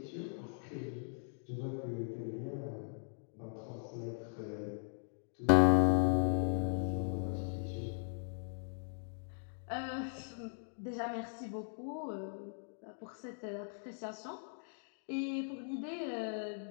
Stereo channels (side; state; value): right; silent; digital silence